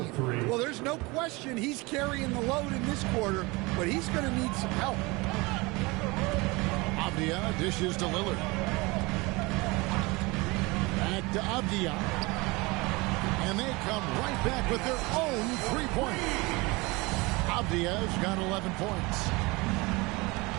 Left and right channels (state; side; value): quieter; left; 24.4 dB